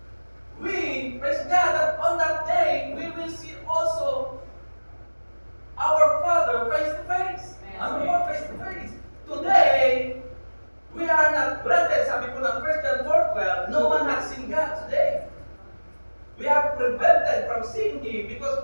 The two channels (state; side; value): inverted; both; correlation -1.00